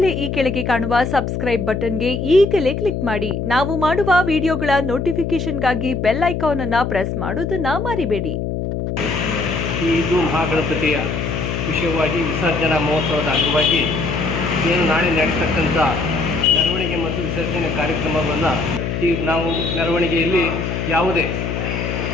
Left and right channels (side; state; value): left; noise; hum, 3 dB below the sound